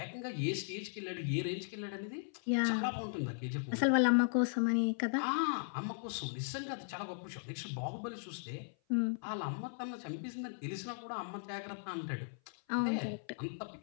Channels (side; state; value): right; silent; 53 dB below the other